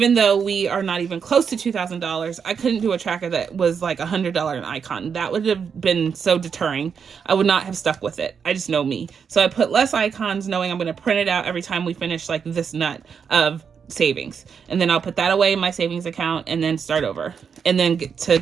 though we are not even close to $2,000, I couldn't do a tracker that was like $100 an icon. That would have been so deterring. I would not have stuck with it. I just know me. So I put less icons knowing I'm going to print it out every time we finish like this nut of savings, and then I'll put that away in my savings account and then start over, and then get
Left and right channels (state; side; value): quieter; left; 6.6 dB